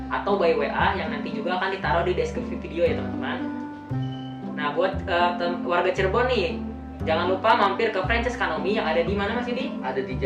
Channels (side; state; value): both; identical; correlation 1.00